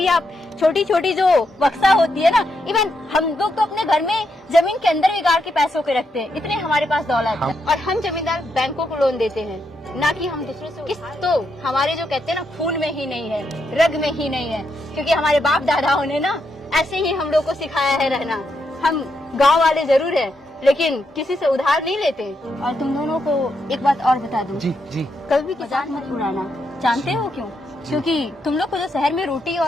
आप छोटी छोटी जो बक्सा होती है ना, इवन हम लोग तो अपने घर में जमीन के अंदर भी गाड़ के पैसों के रखते हैं, इतने हमारे पास दौलत है। और हम जमींदार बैंकों को लोन देते हैं, ना कि हम दूसरों से। किस्त तो हमारे जो कहते हैं ना खून में ही नहीं है, रग में ही नहीं है, क्योंकि हमारे बाप दादाओं ने ना ऐसे ही हम लोग को सिखाया है रहना। हम गांव वाले जरूर है, लेकिन किसी से उधार नहीं लेते। और तुम दोनों को एक बात और बता दूं, जी जी, कभी भी मजाक मत उड़ाना। जानते हो क्यों? क्योंकि तुम लोग को जो शहर में रोटी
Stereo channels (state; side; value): normal; both; correlation 0.81